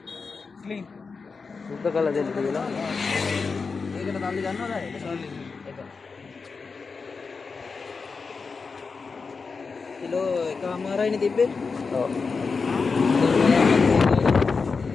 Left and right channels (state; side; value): quieter; right; 4.8 dB